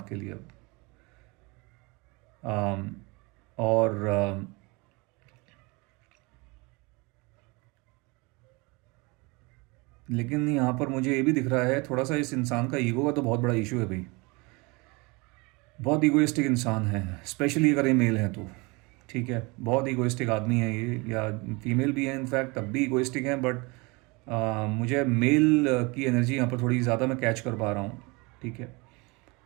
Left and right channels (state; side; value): quieter; left; 26.8 dB